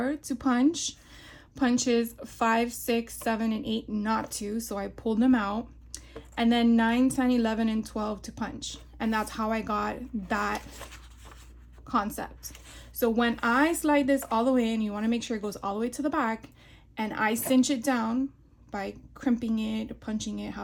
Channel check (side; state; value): both; identical; correlation 1.00